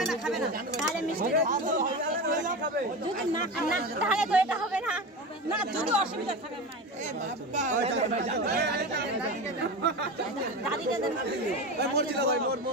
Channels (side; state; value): both; normal; correlation 0.25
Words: না তাহলে মিষ্টি যদি না তাহলে তো এটা হবে না না যদি অসুবিধা থাকে দাদিকে দেন ভাই মোর ছিল ভাই